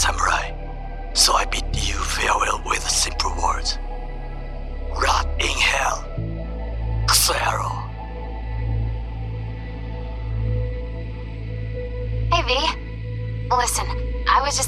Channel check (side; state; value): both; identical; correlation 1.00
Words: so I bid you farewell with simple words. Rot in hell, Kusero. Hey, V. Listen, I was